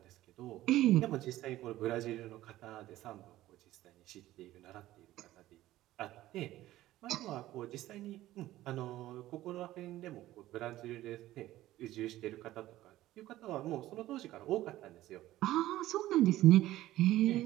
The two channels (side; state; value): left; quieter; 15.3 dB